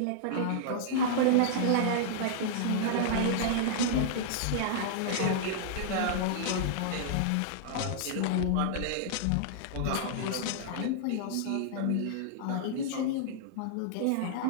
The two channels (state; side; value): different; both; correlation -0.01